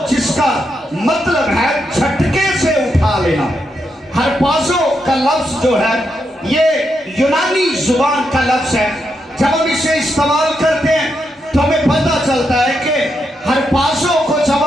जिसका मतलब है झटके से उठा लेना। हरपाजो का लफ्ज जो है ये यूनानी जुबान का लफ्ज है। जब हम इसे इस्तेमाल करते हैं तो हमें पता चलता है कि हरपाजो को जब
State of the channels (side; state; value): both; normal; correlation 0.82